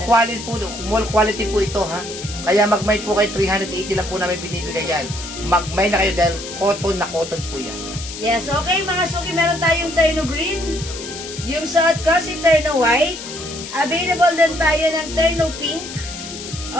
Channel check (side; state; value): left; noise; hiss, 10 dB below the sound